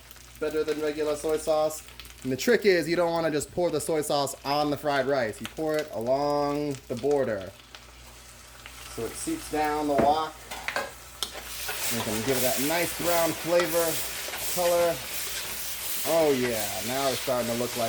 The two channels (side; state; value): both; identical; correlation 1.00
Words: better than regular soy sauce. And the trick is you don't want to just pour the soy sauce on the fried rice. You pour it along the border so it seeps down the wok. You can give it that nice brown flavor, color, Oh yeah, now it's starting to look